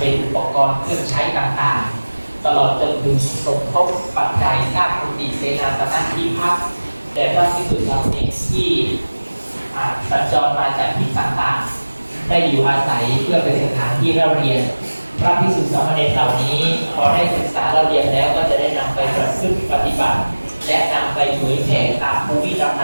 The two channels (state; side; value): inverted; both; correlation -1.00